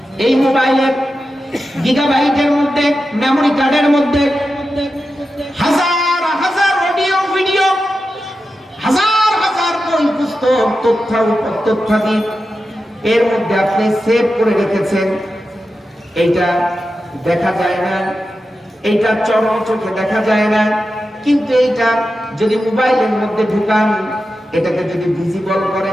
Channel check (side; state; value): both; normal; correlation 0.91